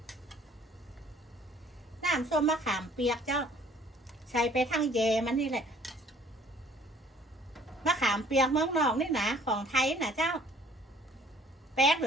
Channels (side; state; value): both; normal; correlation 0.56